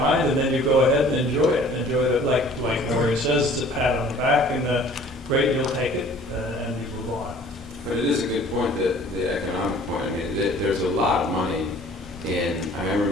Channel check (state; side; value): normal; both; correlation 0.51